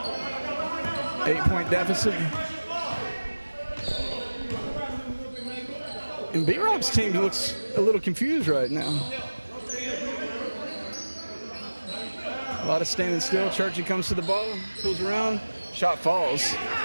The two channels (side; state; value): both; inverted; correlation -1.00